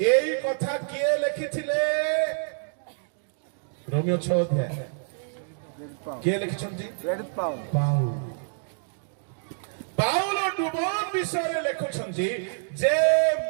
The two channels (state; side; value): silent; left; digital silence